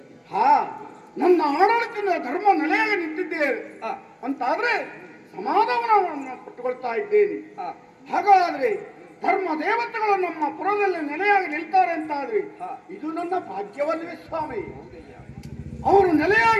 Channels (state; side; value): identical; both; correlation 1.00